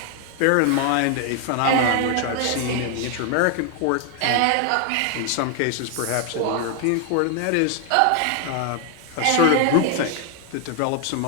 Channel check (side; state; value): both; different; correlation 0.01